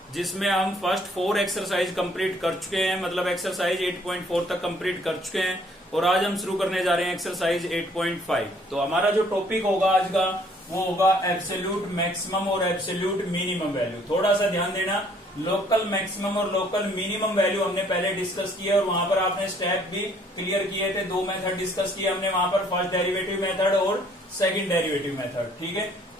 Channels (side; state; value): both; normal; correlation 0.61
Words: जिसमें हम फर्स्ट 4 एक्सरसाइज कंप्लीट कर चुके हैं। मतलब एक्सरसाइज 8.4 तक कंप्लीट कर चुके हैं और आज हम शुरू करने जा रहे हैं एक्सरसाइज 8.5। तो हमारा जो टॉपिक होगा आज का वो होगा एब्सोल्यूट मैक्सिमम और एब्सोल्यूट मिनिमम वैल्यू। थोड़ा सा ध्यान देना, लोकल मैक्सिमम और लोकल मिनिमम वैल्यू हमने पहले डिस्कस किया और वहां पर आपने स्टेप भी क्लियर किए थे। 2 मेथड डिस्कस किए हमने वहां पर, फर्स्ट डेरिवेटिव मेथड और सेकंड डेरिवेटिव मेथड। ठीक है,